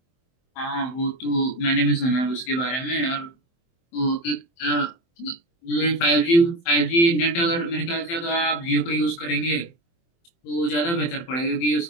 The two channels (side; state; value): right; late; 23 ms